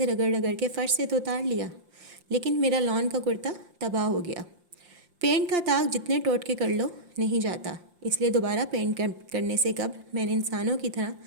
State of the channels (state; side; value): late; left; 5.7 ms